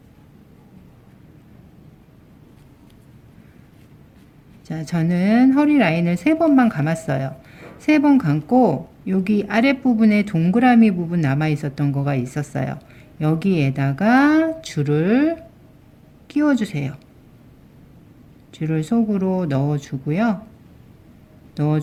자, 저는 허리 라인을 3번만 감았어요. 3번 감고 여기 아랫부분에 동그라미 부분 남아 있었던 거가 있었어요. 여기에다가 줄을 끼워 주세요. 줄을 속으로 넣어 주고요.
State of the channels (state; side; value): identical; both; correlation 1.00